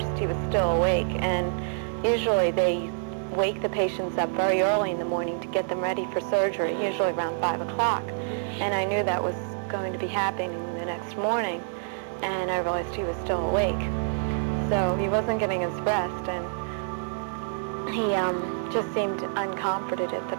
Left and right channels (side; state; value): left; silent; 60 dB below the other